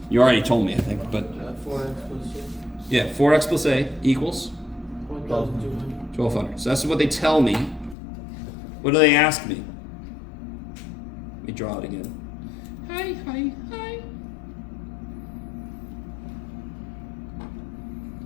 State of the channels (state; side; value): drops out; right; at 8.0 s